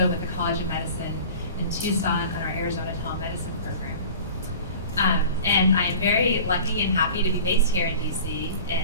with the College of Medicine in Tucson on our Arizona Telemedicine program. And I am very lucky and happy to be based here in DC,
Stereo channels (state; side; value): inverted; both; correlation -0.41